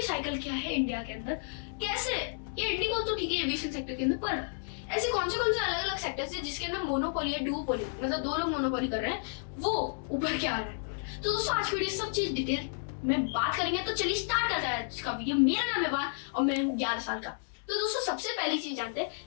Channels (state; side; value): silent; right; digital silence